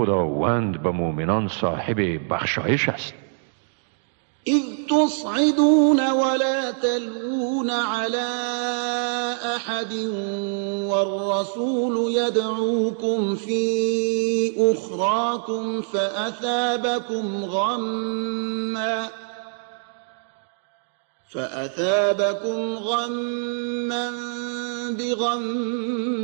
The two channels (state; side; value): silent; left; digital silence